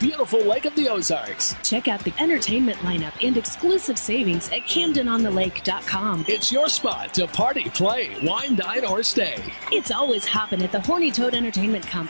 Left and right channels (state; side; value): inverted; both; correlation -1.00